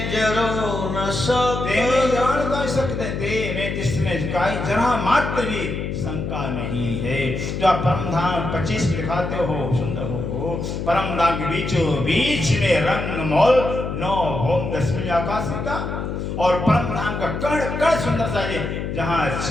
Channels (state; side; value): noise; left; hum, 4 dB below the sound